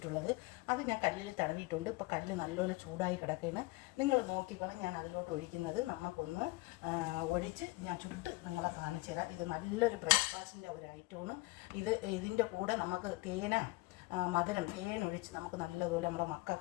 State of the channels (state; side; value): quieter; right; 22.8 dB